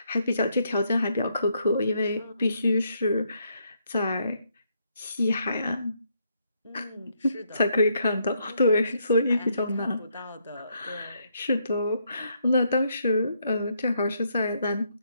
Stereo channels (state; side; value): inverted; both; correlation -0.74